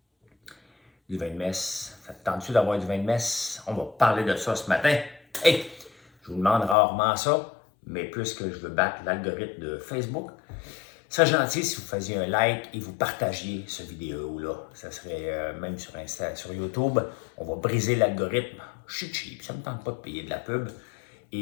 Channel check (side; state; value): right; drops out; at 6.8 s